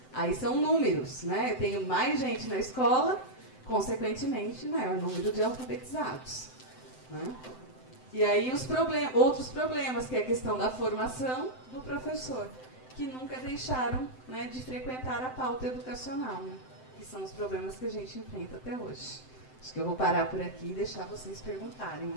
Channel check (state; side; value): late; right; 7.8 ms